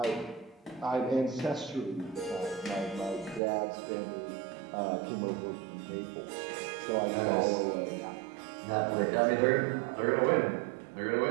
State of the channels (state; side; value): drops out; left; at 3.4 s